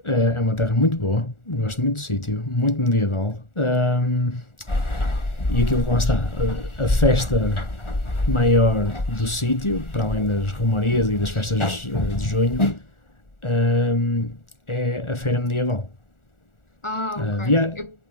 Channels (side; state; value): right; late; 1.4 ms